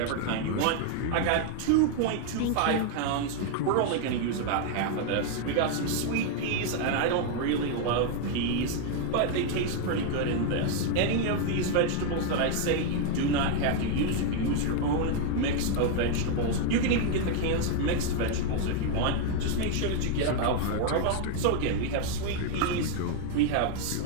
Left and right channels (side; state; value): both; different; correlation 0.01